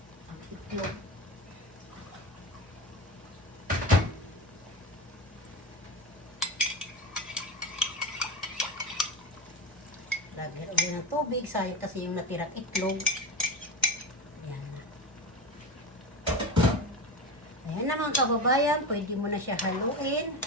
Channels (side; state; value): both; normal; correlation 0.22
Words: Ang itlog. Lagyan ulit ng tubig, sayang kasi yung natirang itlog. Ayan na. Ayan na mga kababayan, pwede mo na siya haluin.